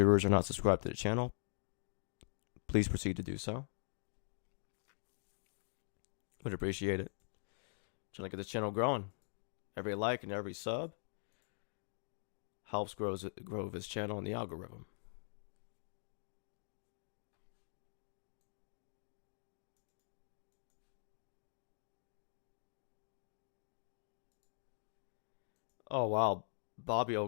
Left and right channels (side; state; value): right; silent; digital silence